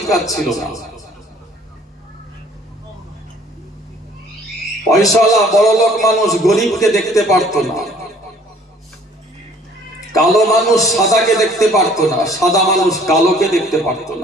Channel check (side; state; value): both; normal; correlation 0.56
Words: ছিল না। পয়সাওয়ালা বড়লোক মানুষ গরিবকে দেখতে পারতো না, কালো মানুষ সাদাকে দেখতে পারতো না, সাদা মানুষ কালোকে দেখতে পারতো